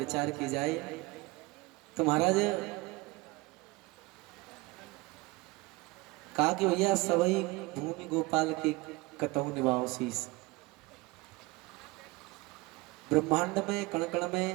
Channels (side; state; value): left; quieter; 22.8 dB